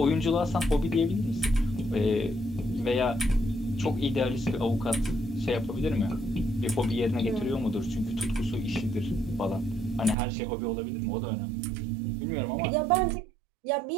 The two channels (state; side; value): drops out; left; at 10.2 s